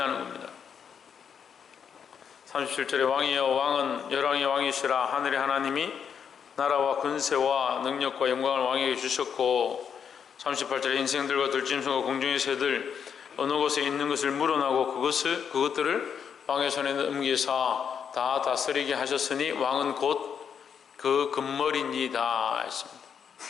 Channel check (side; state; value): right; quieter; 7.4 dB